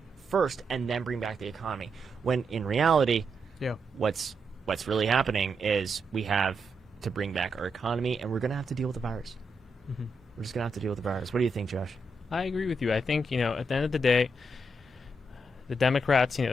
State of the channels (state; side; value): normal; both; correlation 0.82